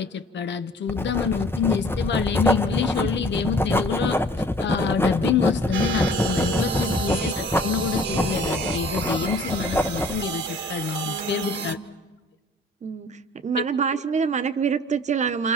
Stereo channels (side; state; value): both; normal; correlation 0.51